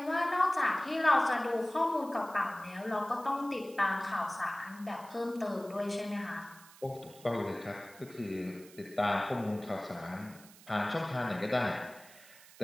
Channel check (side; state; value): right; noise; hiss, 21 dB below the sound